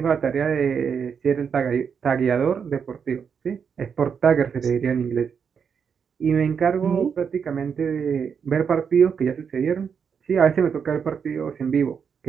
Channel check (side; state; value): left; quieter; 6.8 dB